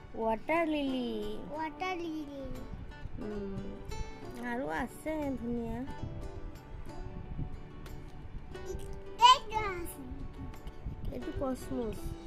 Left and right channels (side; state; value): both; identical; correlation 1.00